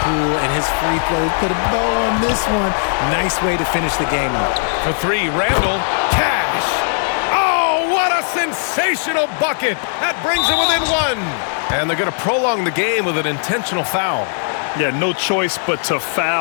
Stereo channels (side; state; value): right; silent; digital silence